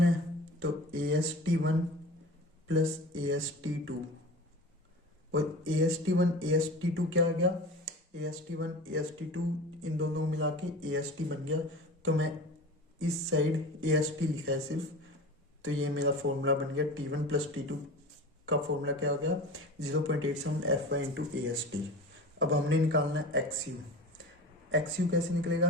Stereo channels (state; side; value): normal; both; correlation 0.35